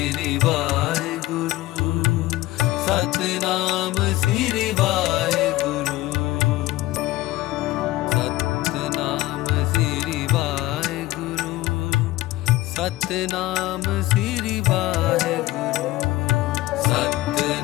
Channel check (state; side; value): quieter; right; 17.7 dB